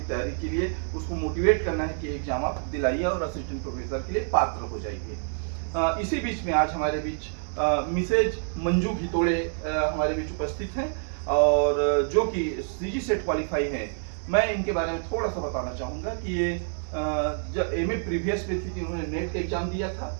तैयारी के लिए, उसको मोटिवेट करना है कि एग्जाम आप दिलाइए और असिस्टेंट प्रोफेसर के लिए पात्र हो जाइए। इसी बीच में आज हमारे बीच मिसेज मंजू घितोड़े हमारे बीच उपस्थित हैं और जो कि सीजी सेट क्वालिफाई हैं। मैं इनके बारे में थोड़ा सा बताना चाहूँगा कि ये जब एमए प्रीवियस में थी कि उन्होंने नेट का एग्जाम दिया था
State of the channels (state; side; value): silent; left; 58 dB below the other